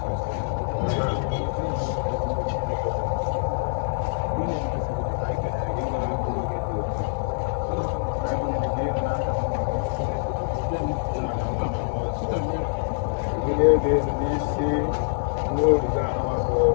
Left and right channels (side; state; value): right; silent; digital silence